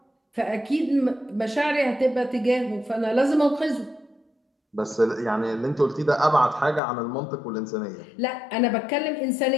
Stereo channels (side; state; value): right; drops out; at 6.8 s